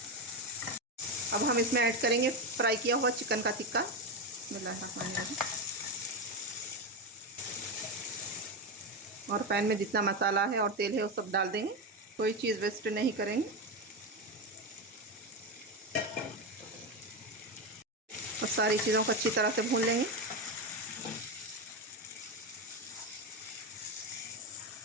अब हम इसमें ऐड करेंगे फ्राई किया हुआ चिकन का टिक्का। बिस्मिल्लाहिर्रहमानिर्रहीम। और पैन में जितना मसाला है और तेल है वो सब डाल देंगे। कोई चीज़ वेस्ट नहीं करेंगे। और सारी चीज़ों को अच्छी तरह से भून लेंगे।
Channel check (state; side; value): normal; both; correlation 0.13